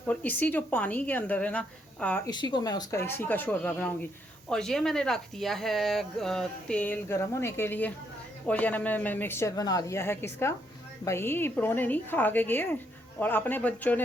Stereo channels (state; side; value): normal; both; correlation 0.74